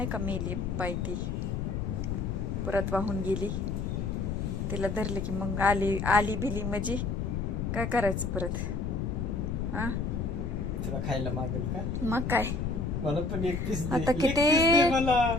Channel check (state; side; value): noise; left; rumble, 1 dB below the sound